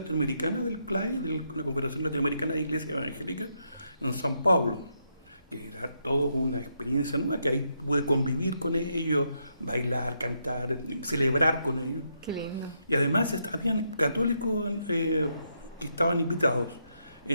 del CLAI, de la Confederación Latinoamericana de Iglesias Evangélicas, en San Pablo, que era toda una experiencia nueva, que ahí pude convivir con ellos, bailar, cantar, celebrar con ellos. Qué lindo. Y además habían católicos que estaban invitados,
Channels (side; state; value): both; inverted; correlation -0.79